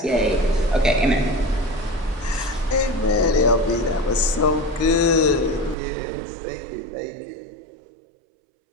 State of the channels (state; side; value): drops out; left; at 5.8 s